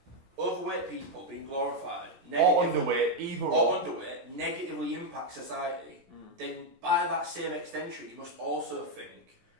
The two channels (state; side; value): late; left; 16 ms